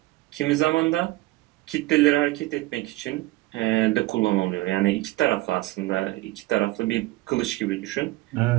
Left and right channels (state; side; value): quieter; left; 19.7 dB